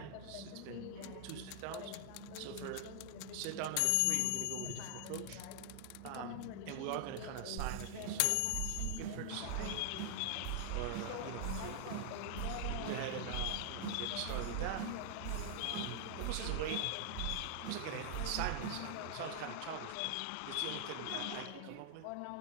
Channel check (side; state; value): both; different; correlation 0.00